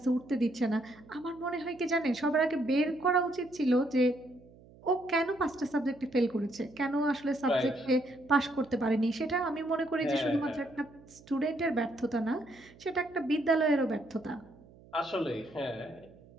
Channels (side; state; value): right; noise; hum, 24 dB below the sound